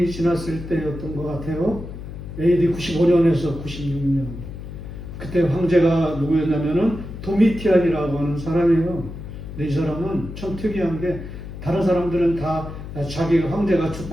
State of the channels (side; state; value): left; noise; hum, 10 dB below the sound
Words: 지났을 때였던 것 같아요. AD 95년에서 96년. 그때 황제가 누구였냐면은 도미티안이라고 하는 사람이에요. 근데 이 사람은 참 특이한 게 다른 사람들은 다 자기 황제가